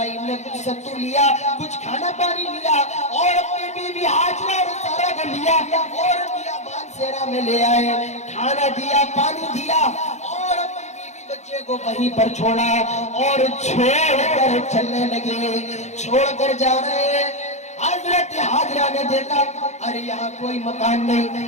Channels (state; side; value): late; right; 0.33 ms